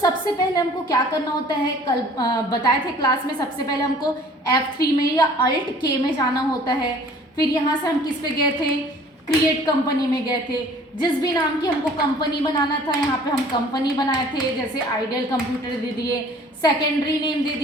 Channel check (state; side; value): normal; both; correlation 0.51